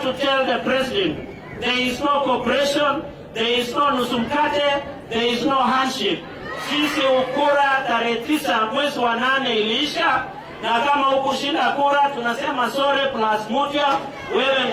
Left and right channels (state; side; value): identical; both; correlation 1.00